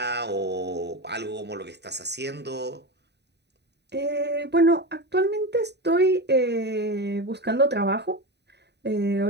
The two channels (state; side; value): late; left; 0.49 ms